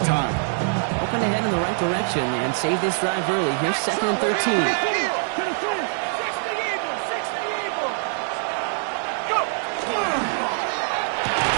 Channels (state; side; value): silent; left; 58 dB below the other